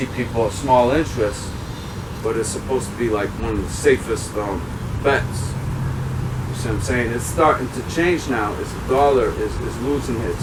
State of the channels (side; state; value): both; identical; correlation 1.00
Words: people a small interest, but it's supposed to be like one of the safest bets. You see what I'm saying? It's starting to change now as the dollar is losing its